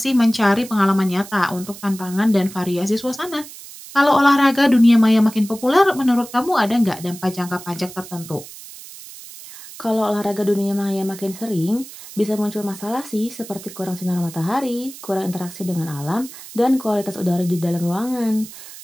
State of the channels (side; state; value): right; noise; hiss, 16 dB below the sound